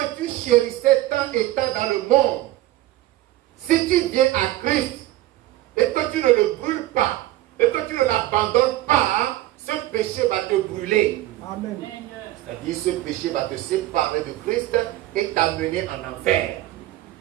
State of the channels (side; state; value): left; quieter; 15.7 dB